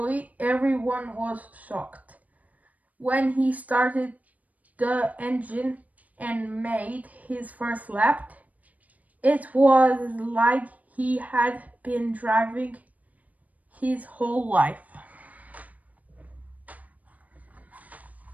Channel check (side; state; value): left; late; 0.073 ms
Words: Everyone was shocked when he started the engine and made his first lap. It was like he had been driving his whole life.